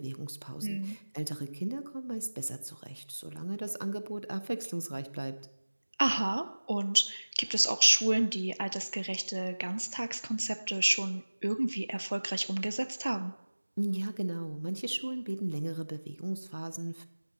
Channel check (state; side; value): inverted; both; correlation -1.00